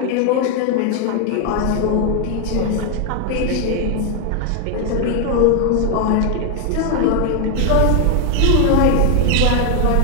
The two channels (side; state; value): both; different; correlation 0.01